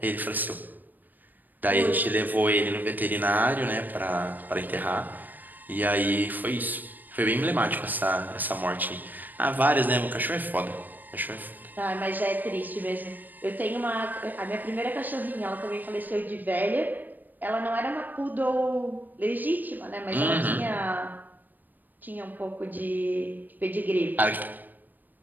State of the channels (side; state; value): left; late; 0.087 ms